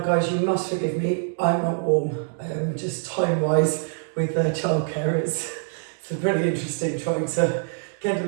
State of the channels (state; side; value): silent; left; digital silence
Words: you must forgive me, I'm not warm, just time-wise with childcare. It's really interesting trying to get